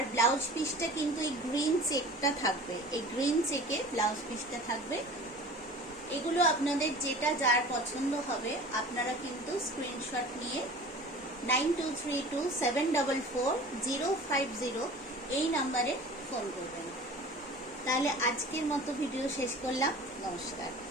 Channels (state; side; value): normal; both; correlation 0.41